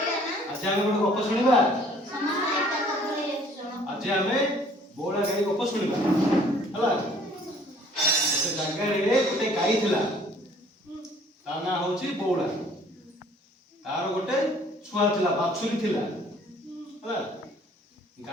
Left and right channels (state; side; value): normal; both; correlation 0.56